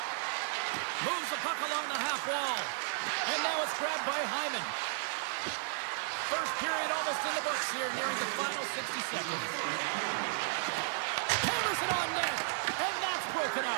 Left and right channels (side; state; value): left; silent; digital silence